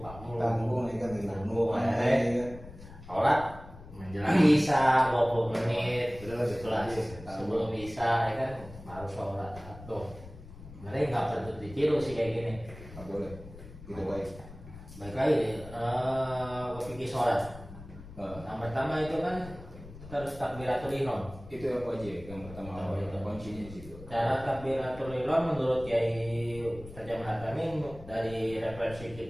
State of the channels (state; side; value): noise; left; rumble, 16 dB below the sound